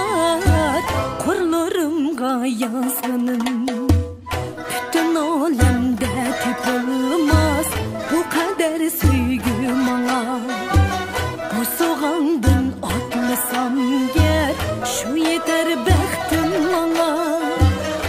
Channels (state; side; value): identical; both; correlation 1.00